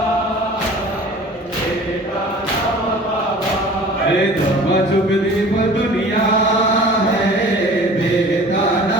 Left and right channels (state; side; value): normal; both; correlation 0.44